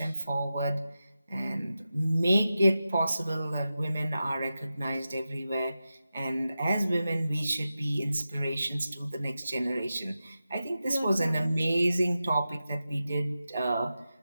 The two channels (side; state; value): both; inverted; correlation -0.92